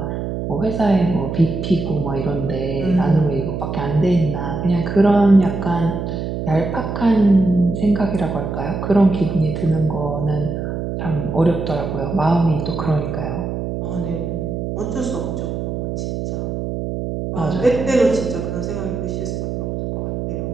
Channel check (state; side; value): noise; right; hum, 4 dB below the sound